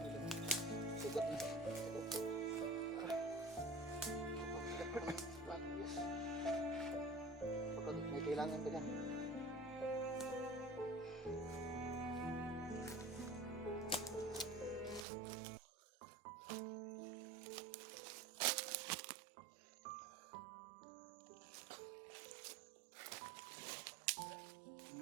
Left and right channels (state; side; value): drops out; left; at 15.1 s